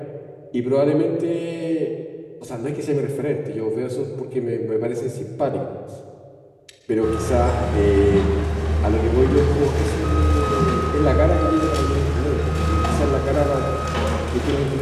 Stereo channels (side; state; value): both; identical; correlation 1.00